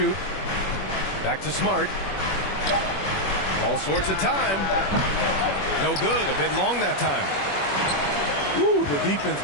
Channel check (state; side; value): late; right; 21 ms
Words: Back to Smart. All sorts of time. No good. A bit long that time. Ooh, the defense